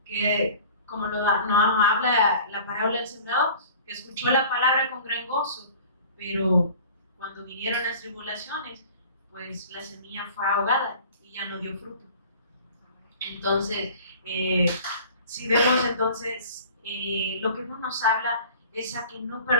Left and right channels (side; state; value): both; inverted; correlation -0.45